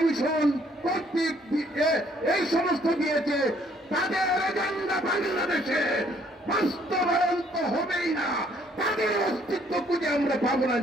কর্তৃক এই সমস্ত দিয়েছে। তাদের এজেন্ডা বাংলাদেশে বাস্তবায়ন তো হবেই না, তাদের অস্তিত্ব খুঁজে আমরা পাবো না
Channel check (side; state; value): both; normal; correlation 0.64